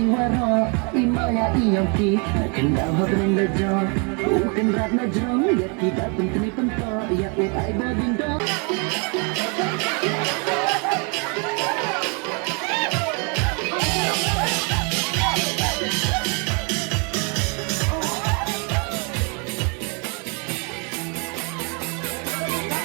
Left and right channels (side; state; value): left; quieter; 35.1 dB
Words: waro imaya iyongki kenda hodrenda jo uken rat na jong ya kita pentri pento ya ai bodindo